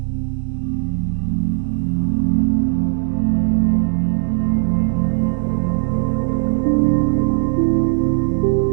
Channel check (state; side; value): silent; left; 58 dB below the other